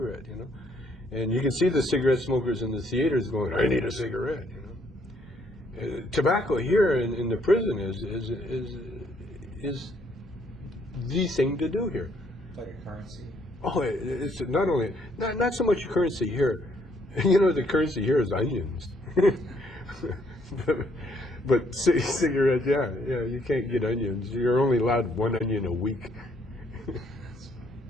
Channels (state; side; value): normal; both; correlation 0.68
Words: you know. And you can see the cigarette smokers in the theaters going, I need a cigarette, you know. Tobacco here in the prison is the thing to do here. It's like a currency. Oh, it's not only, not so much currency here. You know, the currency here is onions. But cigarette, yeah, you can't get onions. You're only allowed 1 onion a week.